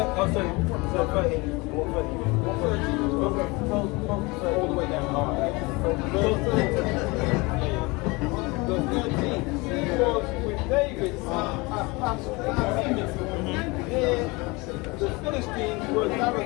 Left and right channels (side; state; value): right; quieter; 25.3 dB